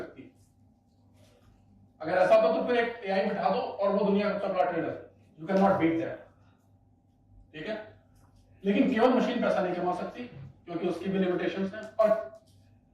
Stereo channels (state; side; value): identical; both; correlation 1.00